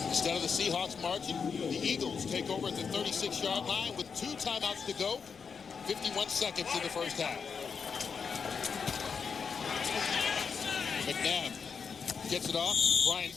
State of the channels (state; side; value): quieter; right; 5.9 dB